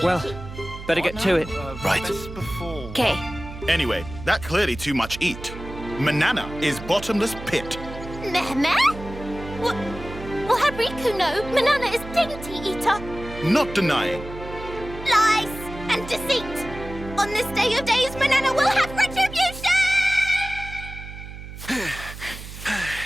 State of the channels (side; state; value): right; noise; hum, 12 dB below the sound